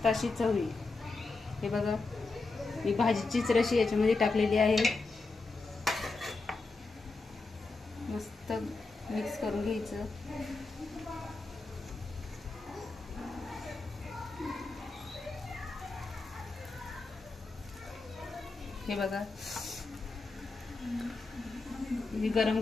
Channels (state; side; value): quieter; right; 3.7 dB